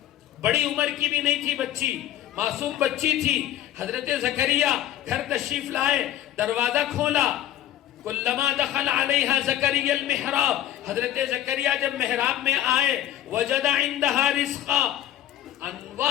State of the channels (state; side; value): quieter; right; 12.2 dB